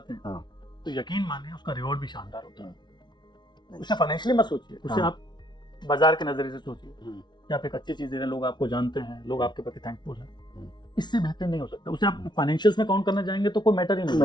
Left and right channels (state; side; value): late; right; 0.21 ms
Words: हैं तो यकीन मानिए उसका रिवॉर्ड भी शानदार होता है। उसे फाइनेंशियली मत सोचिए, उसे आप बाजार के नजरिए से सोचिए कि आप एक अच्छी चीज दे रहे हैं, लोग आपको जानते हैं, लोग आपके प्रति थैंकफुल हैं, इससे बेहतर नहीं हो सकता। उसे आप फाइनेंशियल्स में काउंट करना जाएंगे तो कोई मैटर ही नहीं,